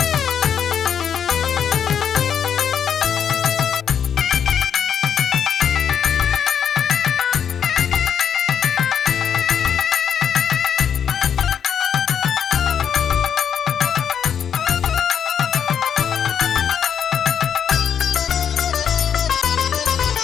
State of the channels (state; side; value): quieter; right; 8.2 dB